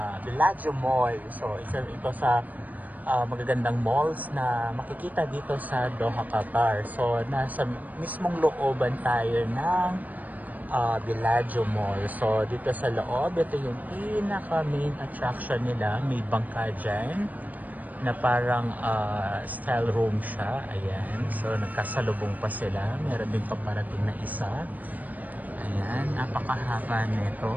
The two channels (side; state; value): left; late; 0.079 ms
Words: Bellagio Mall. So ito sa magagandang malls na makikita dito sa Doha, Qatar. So nasa mismong looban tayo ng Bellagio Mall. So dito sa loob, ito yung pinaka main attraction nila. May bangka dyan na parang style room siya. Ayan. So nagkasalubong pa sila. Meron din paparating na isa. Ayan, napakahaba